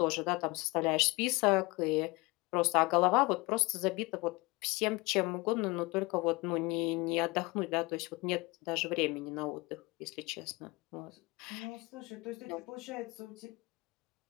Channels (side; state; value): right; quieter; 24.3 dB